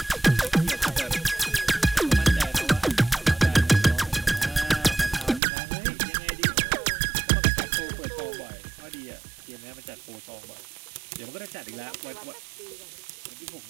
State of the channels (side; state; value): left; drops out; at 5.4 s